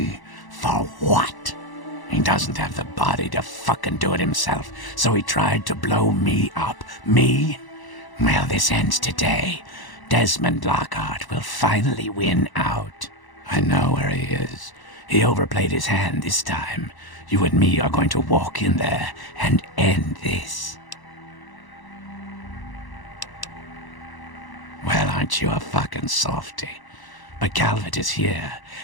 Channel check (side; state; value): right; late; 1.0 ms